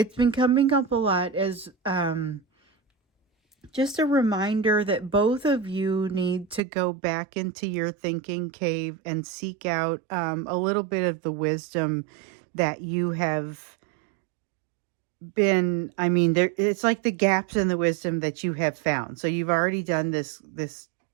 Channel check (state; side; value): drops out; left; at 6.6 s